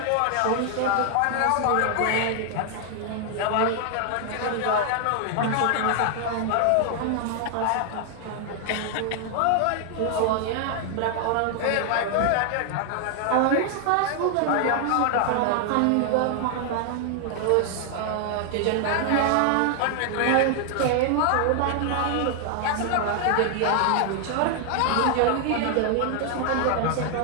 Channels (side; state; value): both; different; correlation 0.00